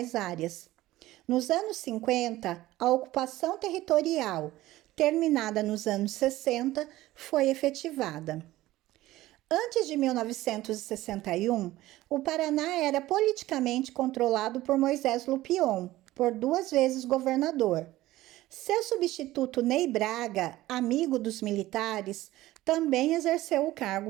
áreas. Nos anos 50, a ocupação territorial, terminada nos anos 60, foi efetivada. Antes de 1961, o Paraná era politicamente controlado por Moisés Lupion, por 2 vezes governador. Seu substituto Ney Braga, amigo dos militares, também exerceu o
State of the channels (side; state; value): left; quieter; 16.5 dB